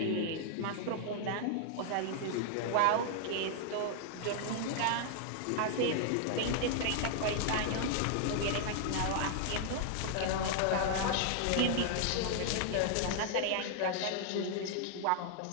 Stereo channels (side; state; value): both; different; correlation 0.00